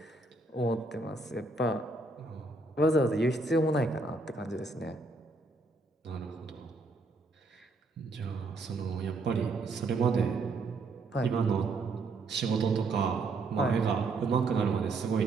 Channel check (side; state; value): left; quieter; 3.4 dB